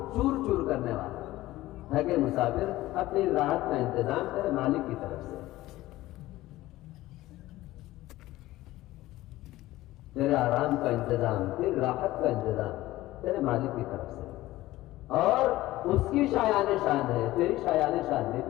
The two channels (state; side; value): quieter; right; 16.9 dB